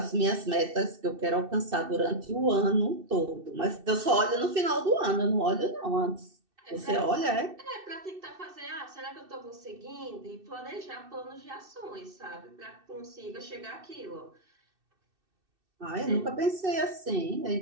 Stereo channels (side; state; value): left; late; 2.6 ms